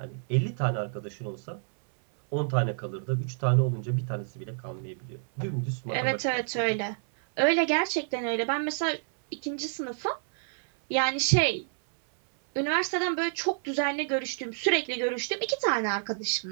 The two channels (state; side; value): silent; left; 59 dB below the other